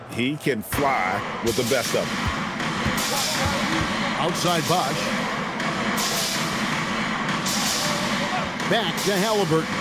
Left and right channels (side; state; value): both; identical; correlation 1.00